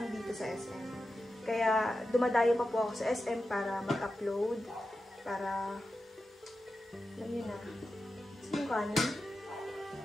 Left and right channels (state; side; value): normal; both; correlation 0.91